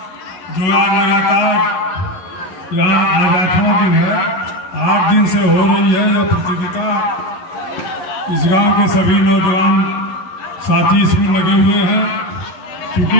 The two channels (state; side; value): late; right; 11 ms